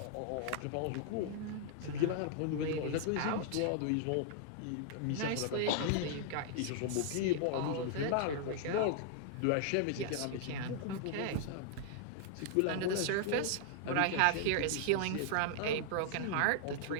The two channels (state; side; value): different; both; correlation -0.01